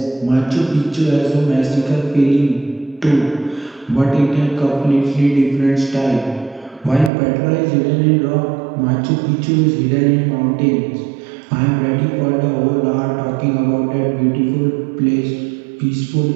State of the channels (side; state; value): left; drops out; at 7.1 s